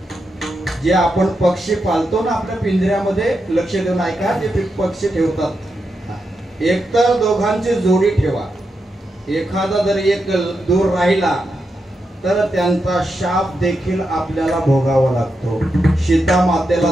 जे आपण पक्षी पालतो ना आपल्या पिंजऱ्यामध्ये, लक्ष देऊन ऐका, जे पक्षी ठेवतात, एकतर दोघांची जोडी ठेवा. एखादा जर एक दूर राहिला तर त्यांचा शाप देखील आपल्याला भोगावा लागतो. सीता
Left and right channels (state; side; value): normal; both; correlation 0.85